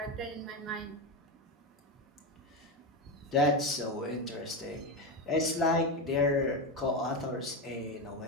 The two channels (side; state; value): both; normal; correlation 0.14